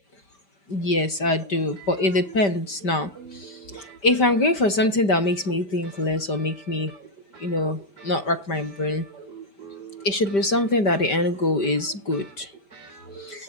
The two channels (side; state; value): right; late; 5.1 ms